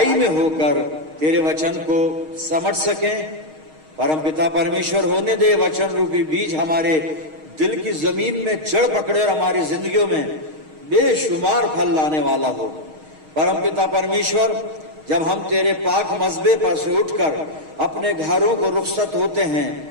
में होकर तेरे वचन को समझ सकें। परमपिता परमेश्वर, होने दे वचन रूपी बीज हमारे दिल की जमीन में जड़ पकड़े और हमारी जिंदगियों में बेशुमार फल लाने वाला हो। परमपिता परमेश्वर, जब हम तेरे पाक मज़बे पर से उठकर अपने घरों को रुखसत होते हैं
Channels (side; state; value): left; late; 6.4 ms